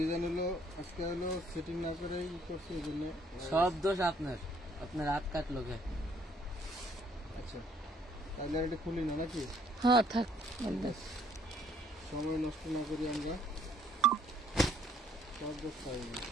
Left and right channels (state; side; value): normal; both; correlation 0.64